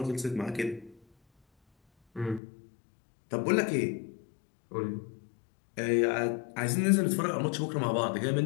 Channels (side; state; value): right; drops out; at 2.4 s